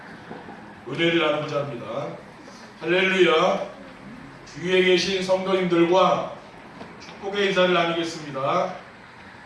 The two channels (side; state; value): both; identical; correlation 1.00